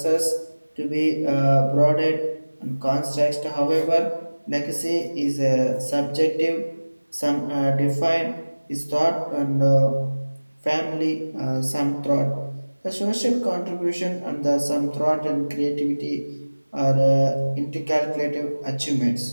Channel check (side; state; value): both; inverted; correlation -1.00